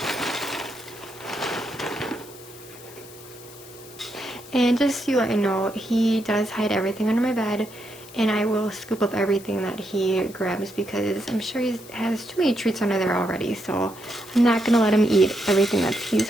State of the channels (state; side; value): noise; left; hiss, 19 dB below the sound